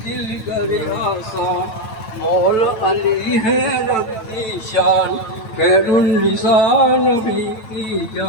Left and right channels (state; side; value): late; right; 9.1 ms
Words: کر آسان مول علی ہے رب کی شان خیر النساء نبی کی